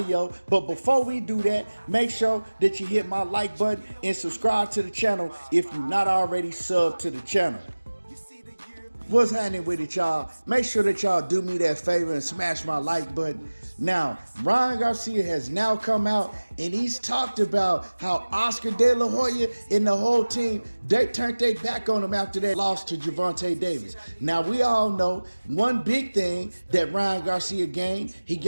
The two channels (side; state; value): both; inverted; correlation -1.00